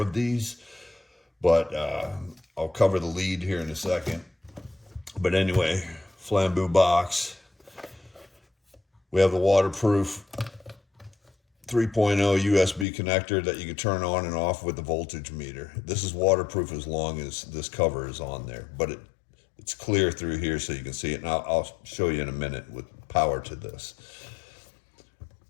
these, but I'll cover the lead here in a second. But anyway, flambeau box. We have the waterproof 3.0 USB connector that you can turn on and off with the voltage meter. This is waterproof as long as this cover is on there, but it's clear through here so you can see it. And I'll show you in a minute with power to this.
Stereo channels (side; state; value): right; drops out; at 12.9 s